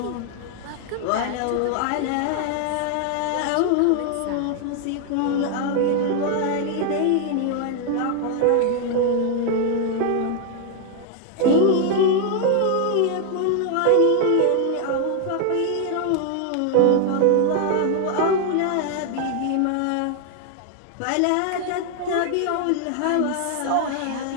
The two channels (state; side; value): different; both; correlation 0.00